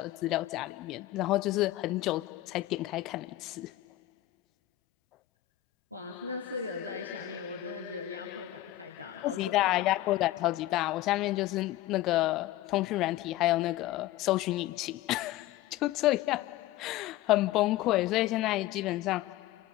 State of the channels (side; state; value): right; quieter; 15.4 dB